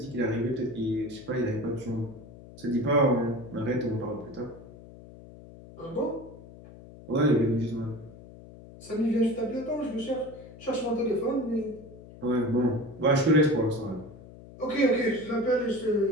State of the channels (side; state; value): left; noise; hum, 18 dB below the sound